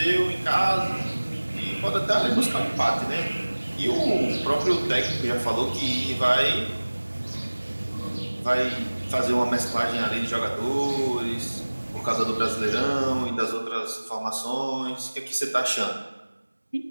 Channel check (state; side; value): inverted; both; correlation -1.00